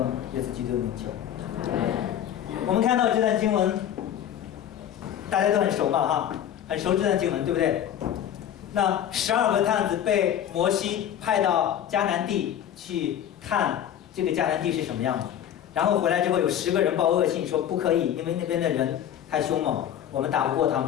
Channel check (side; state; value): right; quieter; 10.3 dB